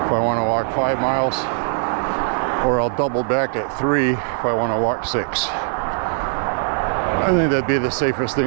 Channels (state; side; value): silent; left; 65 dB below the other